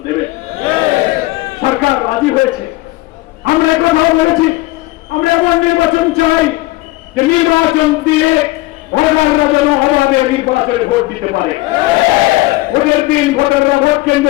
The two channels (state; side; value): quieter; right; 19.9 dB